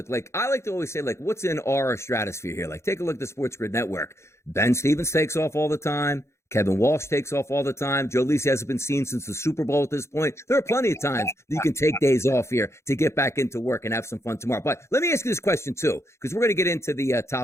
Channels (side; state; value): right; late; 0.13 ms